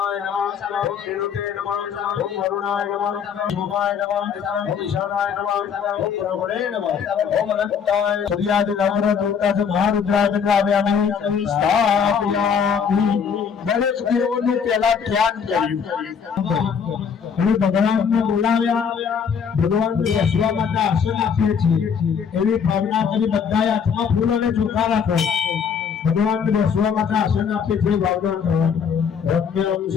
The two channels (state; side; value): quieter; right; 6.9 dB